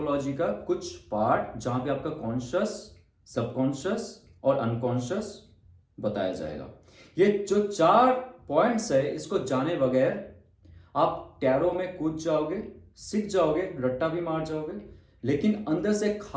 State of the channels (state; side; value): identical; both; correlation 1.00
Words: का कुछ पार्ट, जहां पे आपका कॉन्शियस, सबकॉन्शियस और अनकॉन्शियस बताया जाएगा। ये जो 4 पॉइंट्स है, इसको जाने बगैर आप टैरो में कूद जाओगे, सीख जाओगे, रट्टा भी मार जाओगे, लेकिन अंदर से